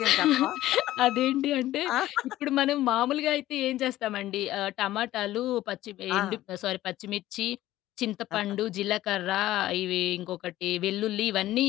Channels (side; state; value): right; quieter; 15.0 dB